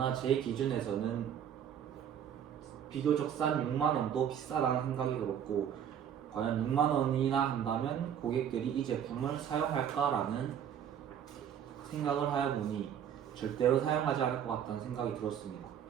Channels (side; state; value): left; quieter; 9.0 dB